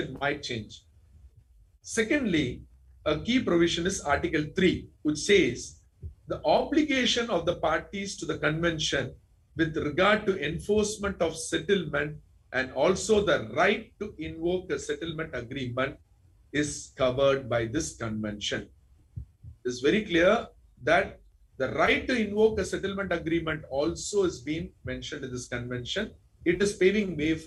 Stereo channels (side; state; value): both; identical; correlation 1.00